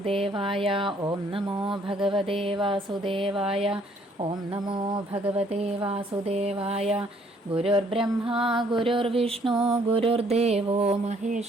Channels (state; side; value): normal; both; correlation 0.64